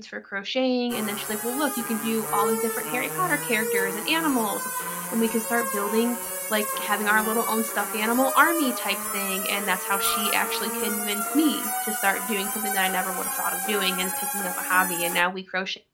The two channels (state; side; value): identical; both; correlation 1.00